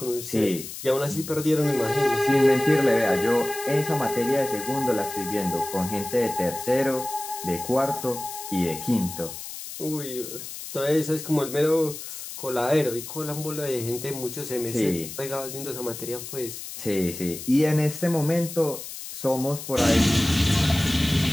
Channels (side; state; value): left; noise; hiss, 10 dB below the sound